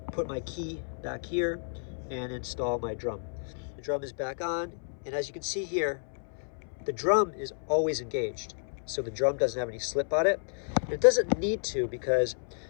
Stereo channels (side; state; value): right; silent; 57 dB below the other